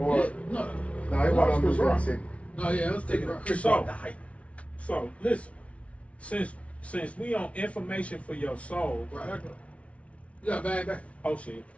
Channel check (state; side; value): late; right; 0.063 ms